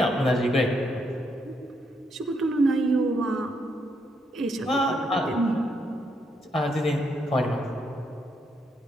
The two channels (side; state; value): both; normal; correlation 0.77